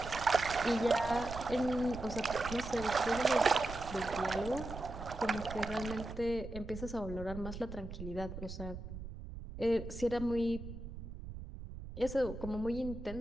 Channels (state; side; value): noise; right; rumble, 10 dB below the sound